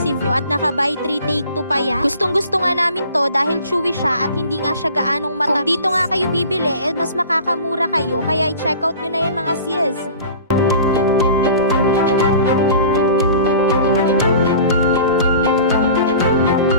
nyo at naka buy 3 take 2 pa yan. Gustong-gusto nga namin to dahil chewy siya at hindi nga siya gaanong matamis. Kung dito nga kayo bibili, mas makakamura kayo. Kaya i-check out nyo na yan mga sis.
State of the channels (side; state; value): both; inverted; correlation -0.42